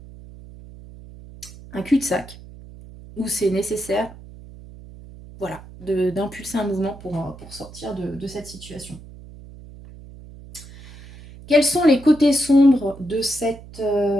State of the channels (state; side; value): noise; right; hum, 18 dB below the sound